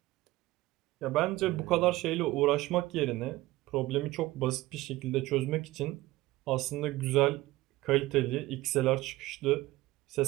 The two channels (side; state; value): left; quieter; 18.4 dB